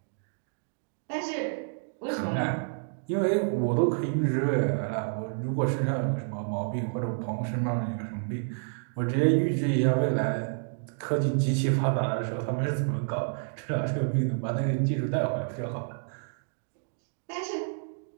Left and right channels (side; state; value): left; silent; digital silence